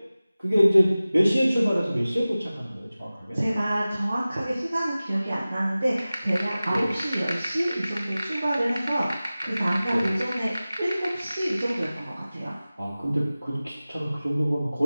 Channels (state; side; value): inverted; both; correlation -0.97